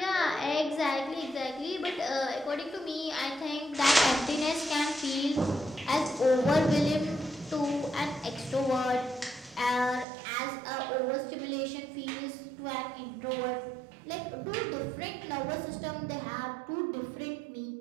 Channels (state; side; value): drops out; left; at 10.1 s